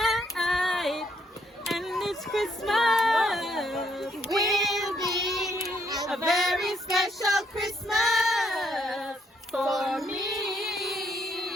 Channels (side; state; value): both; normal; correlation 0.72